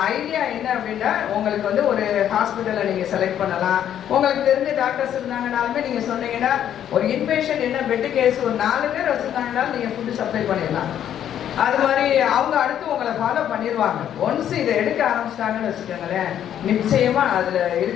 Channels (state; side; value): quieter; right; 10.2 dB